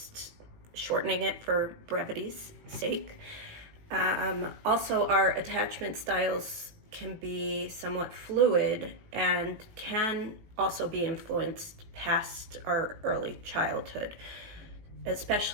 shortening it for brevity's sake. Also, our attachment styles can be somewhat fluid and can also be influenced past our early childhood,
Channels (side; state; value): left; late; 18 ms